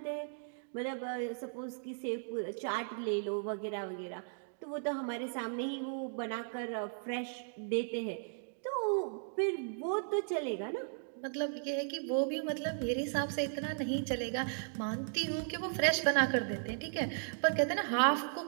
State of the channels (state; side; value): silent; left; digital silence